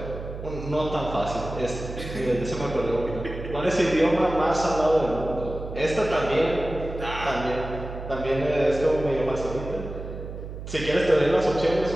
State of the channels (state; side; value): noise; right; hum, 9 dB below the sound